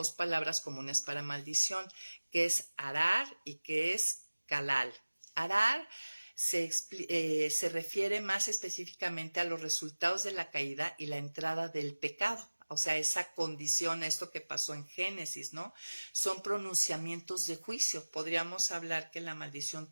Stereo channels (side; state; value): both; inverted; correlation -1.00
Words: palabras comunes para maldición, que es arar y que es calal. Arar se refiere más específicamente a los resultados de la caída y la entrada del pecado. O sea, esa condición, esto que pasó en Génesis, ¿no? Son pronunciamientos de juicio. Podríamos hablar que la maldición